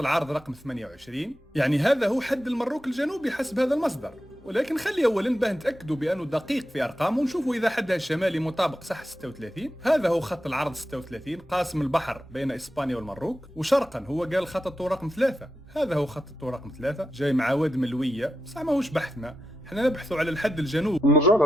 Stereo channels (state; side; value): normal; both; correlation 0.88